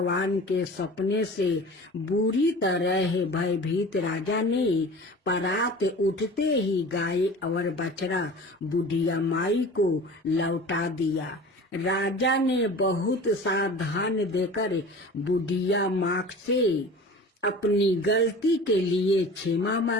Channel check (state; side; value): normal; both; correlation 0.39